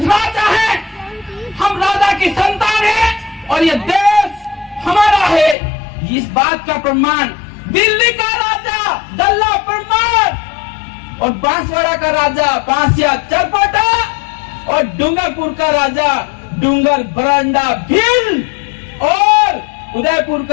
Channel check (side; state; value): right; drops out; at 5.6 s